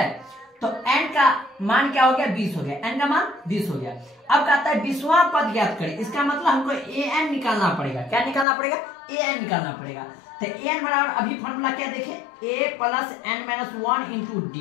तो एन का मान क्या हो गया, 20 हो गया। एन का मान 20 हो गया। अब कहता है 20वां पद ज्ञात करें। इसका मतलब हमको ए एन निकालना पड़ेगा। क्या निकालना पड़ेगा, ए एन निकालना पड़ेगा। तो ए एन बराबर अभी फॉर्मूला क्या देखे, A plus N minus 1 into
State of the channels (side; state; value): right; drops out; at 8.5 s